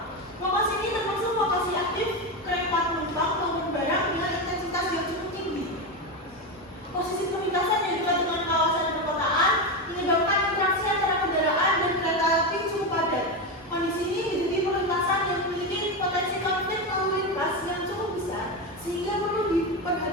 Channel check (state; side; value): normal; both; correlation 0.14